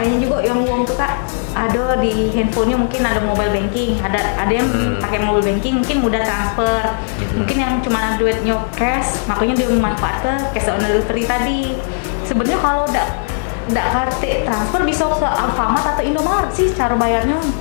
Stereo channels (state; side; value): silent; right; digital silence